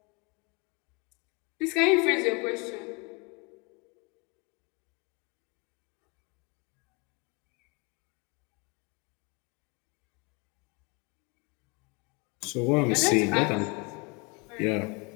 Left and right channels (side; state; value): right; quieter; 30.0 dB